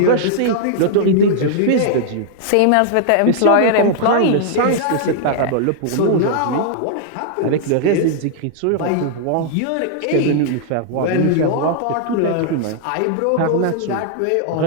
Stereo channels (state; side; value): different; both; correlation -0.01